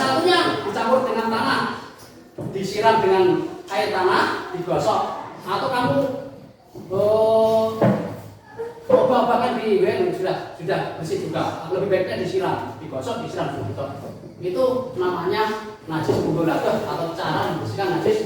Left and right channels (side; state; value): both; identical; correlation 1.00